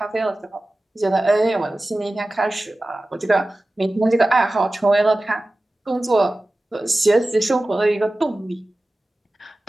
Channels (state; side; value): normal; both; correlation 0.96